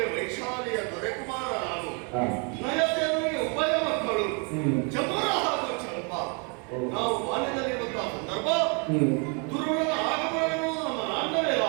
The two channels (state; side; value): quieter; left; 35.5 dB